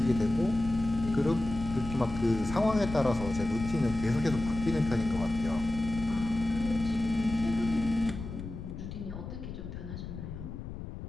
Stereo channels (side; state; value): left; noise; rumble, 9 dB below the sound